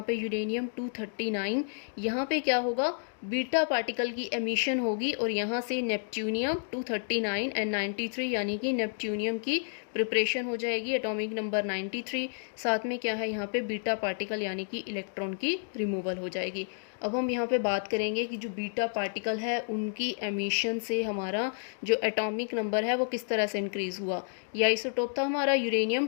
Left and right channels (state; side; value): silent; right; digital silence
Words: पे यूरेनियम 239, यहाँ पे क्या होगा बीटा पार्टिकल की एमिशन होगी और यहाँ से नेपच्यूनियम 239 एंड 93 यानी कि नेपच्यूनियम की प्रिपरेशन हो जाएगी एटॉमिक नंबर 93, साथ में क्या है यहाँ पे बीटा पार्टिकल यानी कि इलेक्ट्रॉन की रिमूवल हो जाएगी। अब हम यहाँ पे बात करेंगे कि जो बीटा पार्टिकल है उनकी एमिशन से हमारा जो एटॉमिक नंबर है वो किस तरह से इंक्रीज़ हुआ। ये आइसोटोप था हमारा यूरेनियम